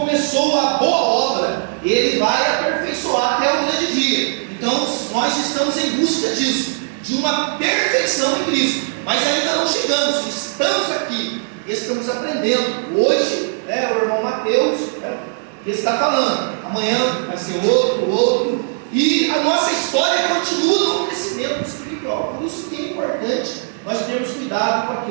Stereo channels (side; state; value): left; silent; digital silence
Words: a boa obra, ele vai aperfeiçoar até o grande dia. Então nós estamos em busca disso, de uma perfeição em Cristo, mas ainda não chegamos, estamos aqui, estamos aprendendo. Hoje, o irmão Mateus está falando, amanhã vai ser outro, e a nossa história continua no crescimento espiritual. Por isso que é importante nós termos cuidado com